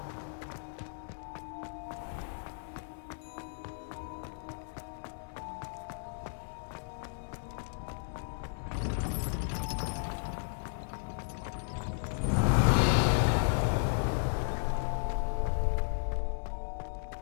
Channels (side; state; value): right; silent; 55 dB below the other